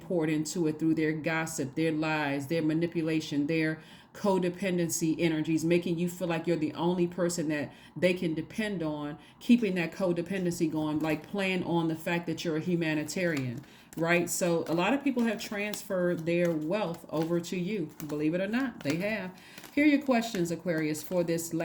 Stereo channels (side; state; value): both; identical; correlation 1.00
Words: into it through their gossip, their lies, their manipulation, their codependency energies, making you feel like you're the only person that they can depend on, keeping that codependency going, like playing on the fact that you're a humanitarian, right? So a lot of people have transferred their wealth over to you. Believe it or not, they have. Here are your questions, Aquarius, for this